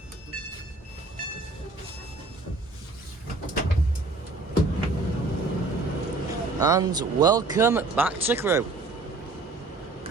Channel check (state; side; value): quieter; left; 3.5 dB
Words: And welcome back to Crewe.